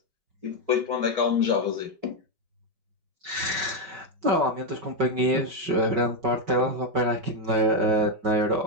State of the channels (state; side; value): late; left; 5.3 ms